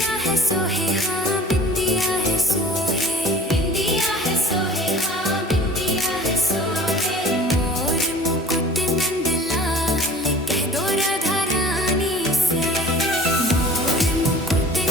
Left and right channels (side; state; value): both; normal; correlation 0.44